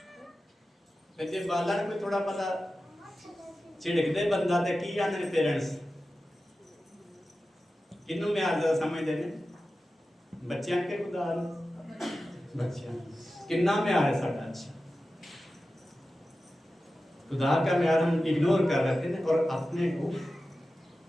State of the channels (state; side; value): normal; both; correlation 0.94